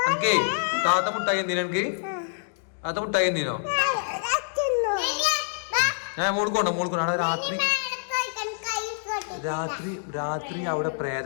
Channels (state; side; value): silent; right; digital silence